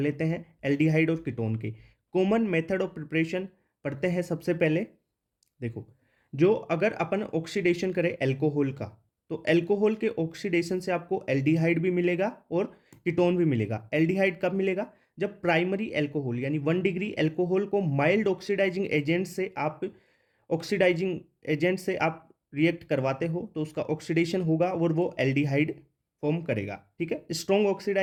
हैं एल्डिहाइड और कीटोन के। कॉमन मेथड ऑफ प्रिपरेशन पढ़ते हैं सबसे पहले। देखो, जो अगर अपन ऑक्सीडेशन करें एल्कोहल का, तो एल्कोहल के ऑक्सीडेशन से आपको एल्डिहाइड भी मिलेगा और कीटोन भी मिलेगा। एल्डिहाइड कब मिलेगा? जब प्राइमरी एल्कोहल यानी 1 डिग्री एल्कोहल को माइल्ड ऑक्सीडाइजिंग एजेंट से आप रिएक्ट करवाते हो तो उसका ऑक्सीडेशन होगा और वो एल्डिहाइड फॉर्म करेगा। ठीक है, स्ट्रॉन्ग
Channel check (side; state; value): both; identical; correlation 1.00